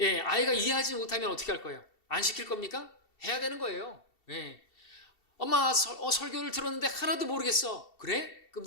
아이가 이해하지 못하면 어떻게 할 거예요? 안 시킬 겁니까? 해야 되는 거예요. 예. 엄마 설교를 들었는데 하나도 모르겠어. 그래? 그럼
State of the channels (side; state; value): right; late; 2.7 ms